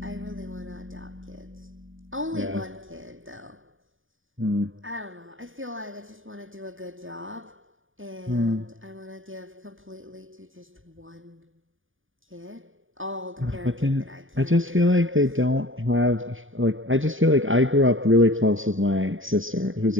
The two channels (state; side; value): late; left; 0.58 ms